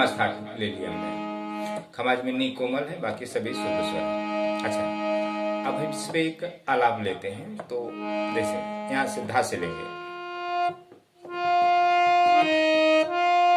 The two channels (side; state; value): both; identical; correlation 1.00